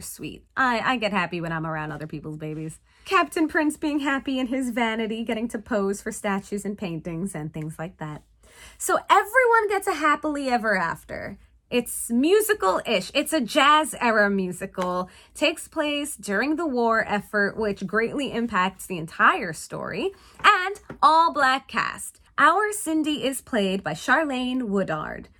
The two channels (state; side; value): identical; both; correlation 1.00